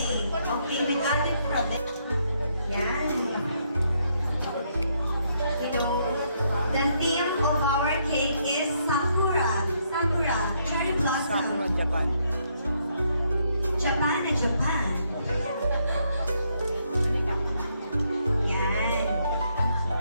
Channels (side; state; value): both; inverted; correlation -0.74